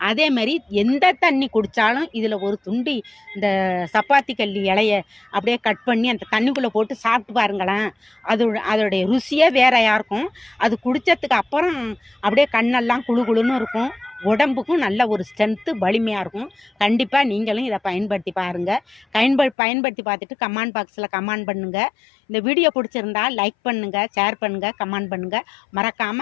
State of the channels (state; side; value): drops out; right; at 19.6 s